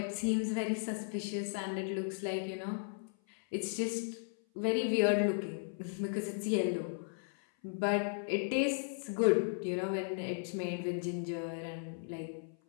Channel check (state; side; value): silent; right; 54 dB below the other